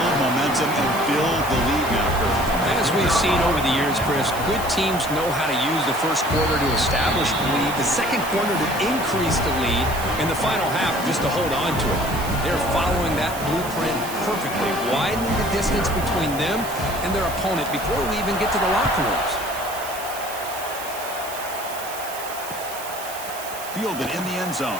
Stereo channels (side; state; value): right; noise; hiss, 11 dB below the sound